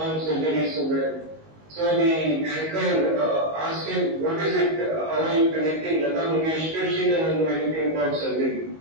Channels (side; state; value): left; late; 19 ms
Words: surgery so well. So the anchor asked him, what is it, how are you connecting Lata Mangeshkar? She doesn't know anything about surgery.